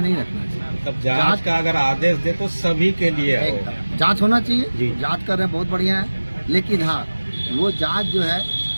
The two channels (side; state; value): both; inverted; correlation -1.00